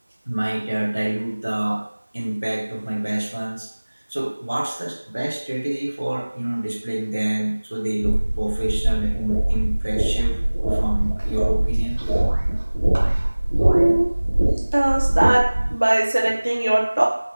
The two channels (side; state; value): both; inverted; correlation -1.00